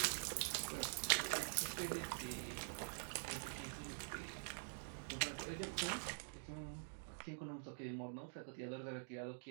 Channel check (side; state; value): left; silent; digital silence